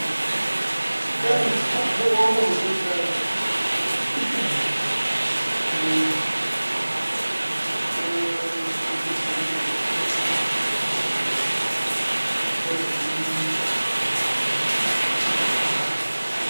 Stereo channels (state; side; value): inverted; both; correlation -1.00